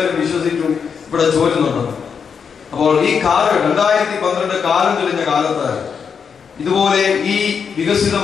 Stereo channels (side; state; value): right; quieter; 6.5 dB